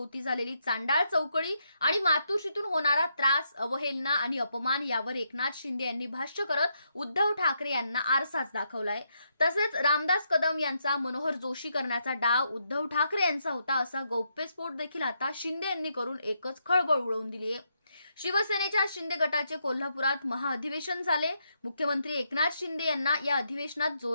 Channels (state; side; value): inverted; both; correlation -0.79